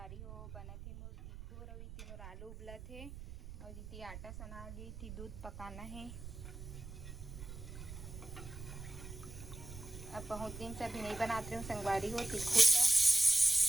हो बना थे मोर तिखुर और इतने मोर आलू उबला थे और इतनी आटा सना ली थी, दूध पकाना है। अब बहुत दिन से अभी नहीं बनाते हूँ संगवारी हो तिखुर का।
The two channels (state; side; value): noise; right; rumble, 12 dB below the sound